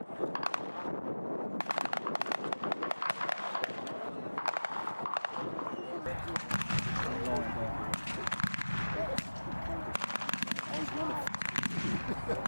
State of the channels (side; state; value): both; inverted; correlation -1.00